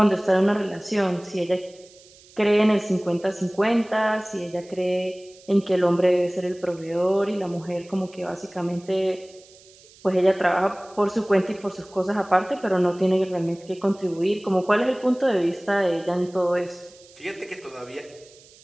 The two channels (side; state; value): right; noise; hiss, 25 dB below the sound